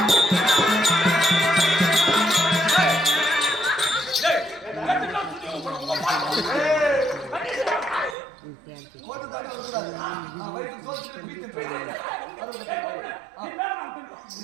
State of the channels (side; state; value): left; drops out; at 8.2 s